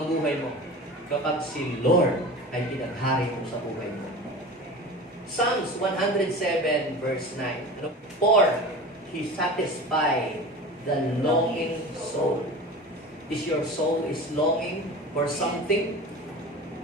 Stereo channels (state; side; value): normal; both; correlation 0.34